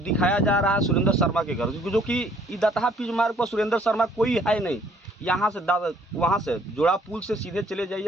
जा रहा है सुरेंद्र शर्मा के घर, जो कि दतहा पिच मार्ग पर सुरेंद्र शर्मा कोई है नहीं। यहाँ से वहाँ से जोड़ा पुल से सीधे चले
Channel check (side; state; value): both; normal; correlation 0.61